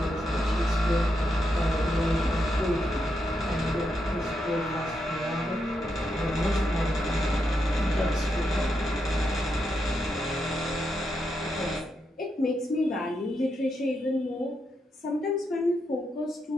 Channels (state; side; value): normal; both; correlation 0.83